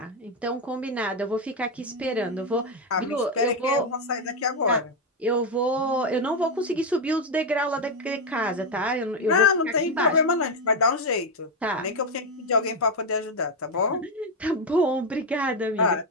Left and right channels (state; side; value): normal; both; correlation 0.06